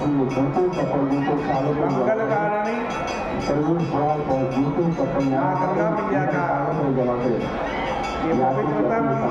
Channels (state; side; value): identical; both; correlation 1.00